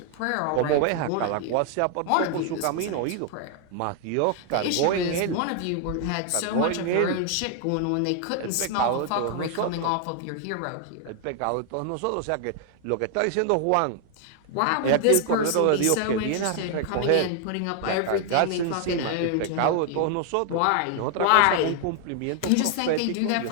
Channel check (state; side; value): different; both; correlation 0.00